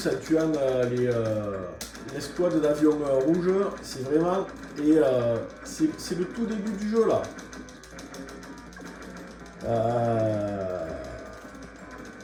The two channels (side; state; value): both; identical; correlation 1.00